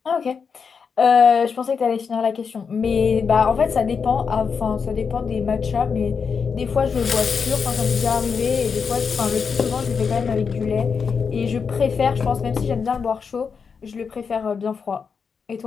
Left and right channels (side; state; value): right; quieter; 5.8 dB